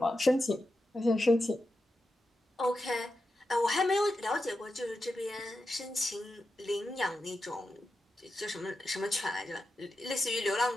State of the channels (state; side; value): normal; both; correlation 0.89